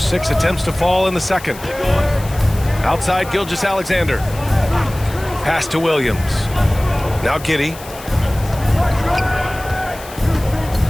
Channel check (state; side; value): noise; left; hiss, 17 dB below the sound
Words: 6 attempts to fall in the second. Outside, Gilgeous-Alexander. Pass to Williams. Now Giddey.